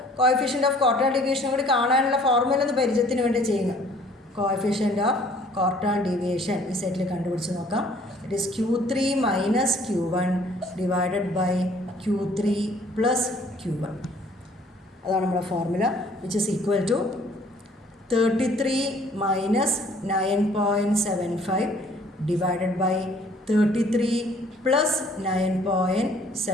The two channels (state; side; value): normal; both; correlation 0.57